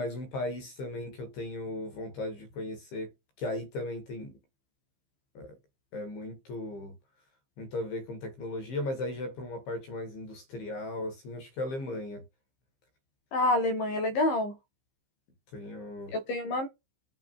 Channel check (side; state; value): right; late; 15 ms